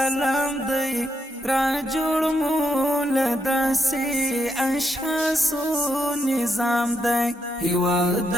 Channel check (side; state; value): both; normal; correlation 0.80